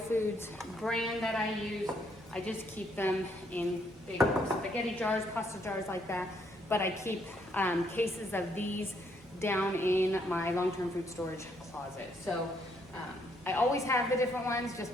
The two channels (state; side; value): normal; both; correlation 0.71